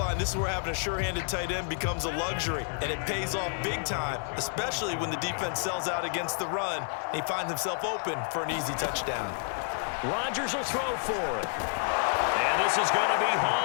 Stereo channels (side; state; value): right; silent; 58 dB below the other